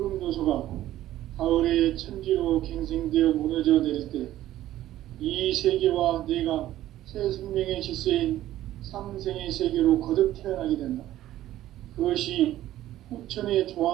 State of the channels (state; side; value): quieter; left; 13.8 dB